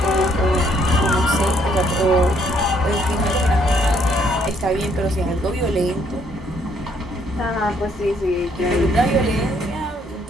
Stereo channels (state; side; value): normal; both; correlation 0.68